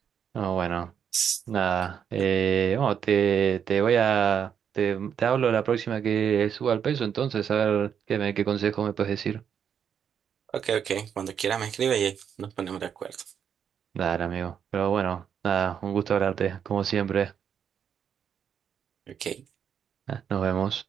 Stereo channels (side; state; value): left; quieter; 8.0 dB